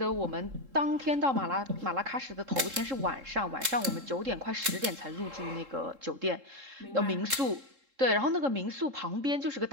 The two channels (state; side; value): late; left; 3.7 ms